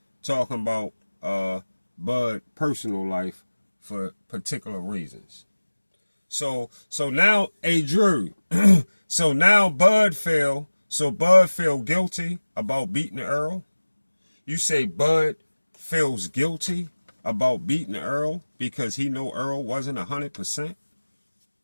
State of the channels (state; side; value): inverted; both; correlation -1.00